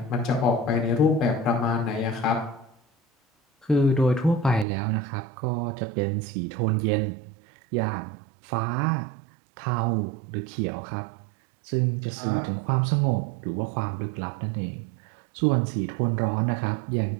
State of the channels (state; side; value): drops out; left; at 4.7 s